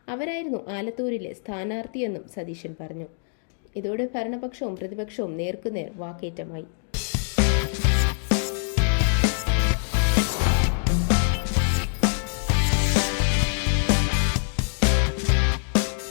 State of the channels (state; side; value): silent; right; digital silence